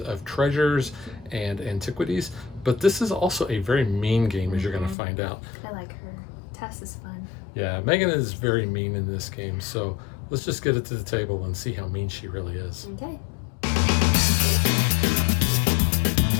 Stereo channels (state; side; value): drops out; right; at 5.0 s